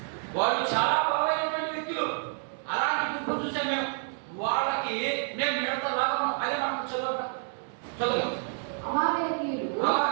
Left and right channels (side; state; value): left; silent; 59 dB below the other